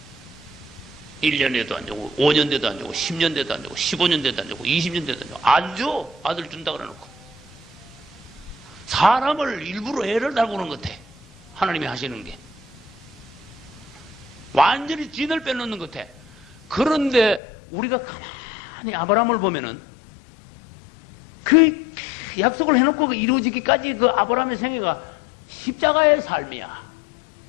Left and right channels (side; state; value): right; drops out; at 17.4 s